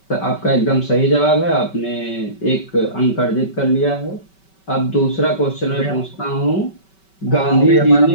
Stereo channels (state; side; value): late; right; 5.2 ms